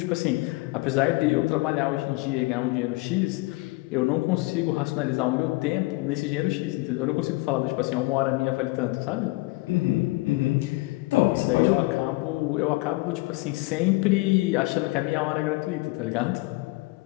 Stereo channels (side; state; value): right; quieter; 22.8 dB